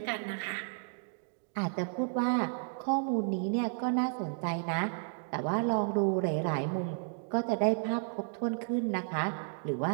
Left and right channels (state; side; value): silent; left; digital silence